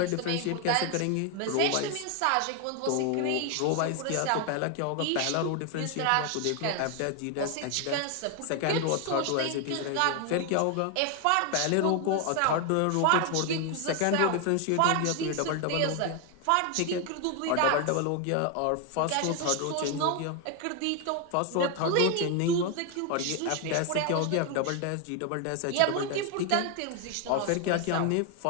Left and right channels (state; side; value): different; both; correlation 0.01